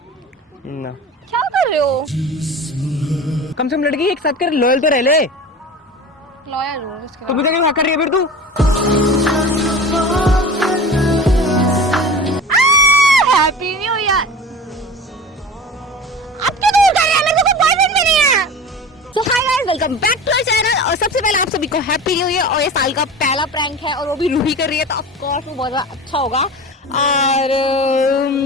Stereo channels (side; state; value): both; normal; correlation 0.35